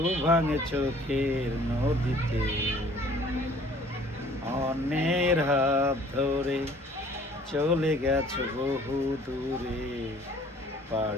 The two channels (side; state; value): both; normal; correlation 0.54